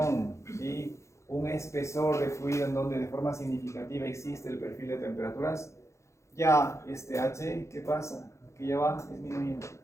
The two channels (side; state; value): right; late; 0.14 ms